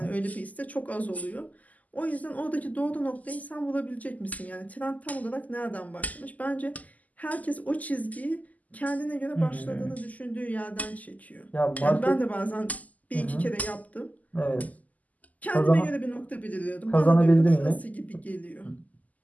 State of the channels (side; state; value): right; late; 0.077 ms